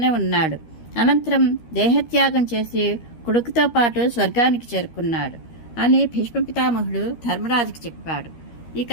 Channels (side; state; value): right; late; 13 ms